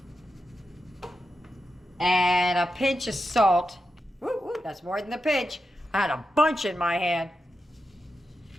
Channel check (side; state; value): both; normal; correlation 0.89